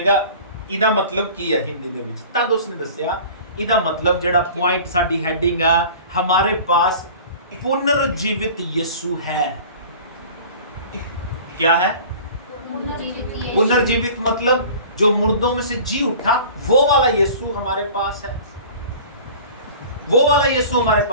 कहा इहदा मतलब की है हिंदी दे विच, तद उसने दस्सिया इहदा मतलब जेड़ा पॉइंट साडी हेडिंग आ हमारे पास पुनर्जीवित यीशु है। क्या है? पुनर्जीवित मतलब जो मुर्दों में से जी उठा वो वाला यीशु हमारे पास है, वो वाला यीशु हमारे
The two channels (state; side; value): inverted; both; correlation -0.43